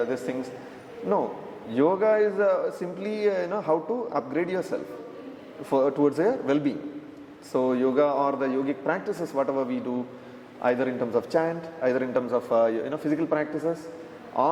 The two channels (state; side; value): identical; both; correlation 1.00